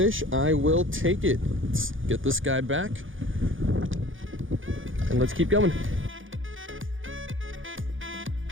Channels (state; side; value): late; left; 0.58 ms